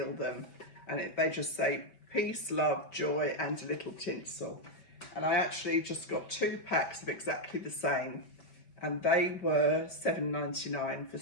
them, and they just say peace, love, joy, and a little tinsel. And I actually just got 2 packs of exactly the same, and they were $7.99 for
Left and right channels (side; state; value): right; late; 5.2 ms